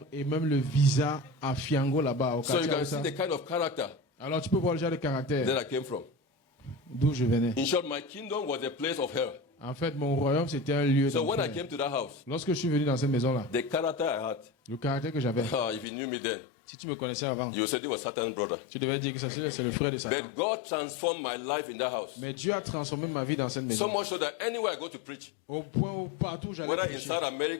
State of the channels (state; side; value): drops out; right; at 15.9 s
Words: et même le visa à Fiango là-bas. Au So you quartier can Aoussa. see the kind of character Alors tu peux voir le genre de caractère that I came from. d'où je venais. In short, my kingdom was a place of hell. En fait, mon royaume, c'était un lieu So when I d'enfer. came to that house, Lorsque je suis venu dans cette maison-là, the character I had, le caractère que j'avais, if you knew me then, si tu me connaissais avant, you said it was Satan's brother. tu devais dire que ça, c'est le frère de Satan. But God transformed my life in that house. Mais Dieu a transformé ma vie dans cette So maison. much so that anywhere I go to preach, Au point où partout j'allais whether in prêcher, South